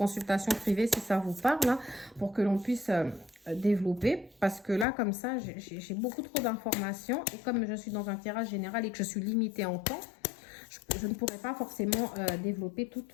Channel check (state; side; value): drops out; right; at 4.9 s